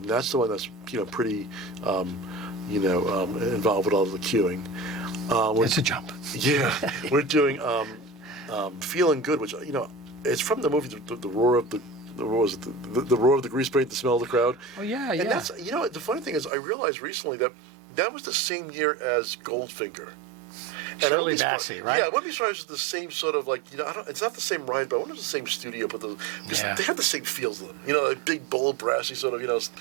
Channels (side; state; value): left; drops out; at 16.5 s